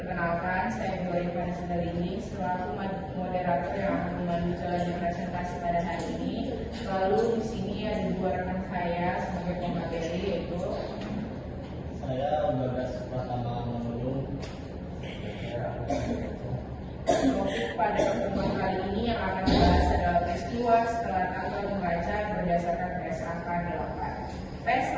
saya Bu Rifana Sindarini selaku moderator yang akan memandu jalannya presentasi pada hari ini. Lalu di sini ada dua rekan saya sebagai pemateri, yaitu saya Bagas Pratama Manulung. Topik pada pertemuan kali ini yang akan dibahas adalah peristiwa setelah tanggal membaca berdasarkan PSAK 8.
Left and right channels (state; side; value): identical; both; correlation 1.00